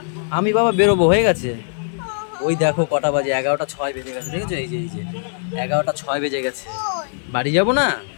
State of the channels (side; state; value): right; silent; 65 dB below the other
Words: আমি বাবা বেরোবো, হয়ে গেছে। ওই দেখো কটা বাজে, 11:06 বেজে গেছে, দেখেছো? এই যে 11:06 বেজে গেছে, বাড়ি যাবো না?